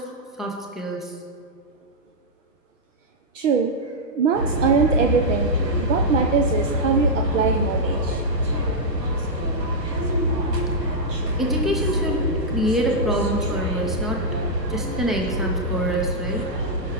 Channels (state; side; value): normal; both; correlation -0.06